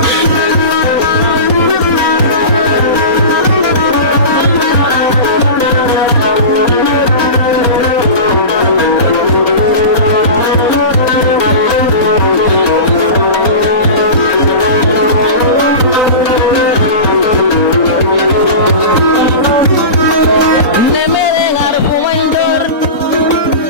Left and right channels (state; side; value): late; right; 3.8 ms